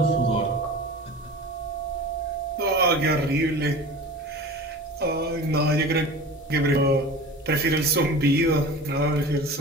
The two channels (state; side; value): normal; both; correlation 0.36